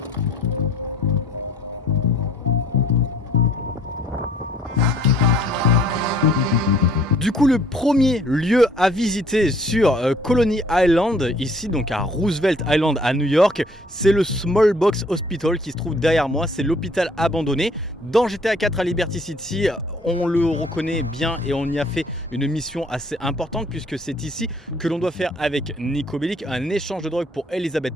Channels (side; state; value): both; normal; correlation 0.58